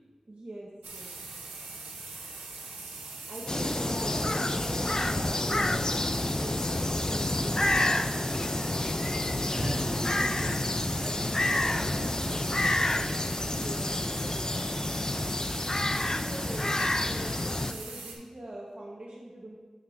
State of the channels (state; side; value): normal; both; correlation 0.84